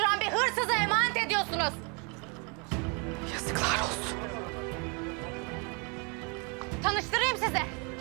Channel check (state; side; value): quieter; left; 33.0 dB